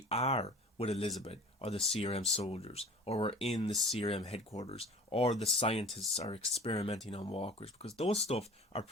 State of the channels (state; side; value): normal; both; correlation 0.42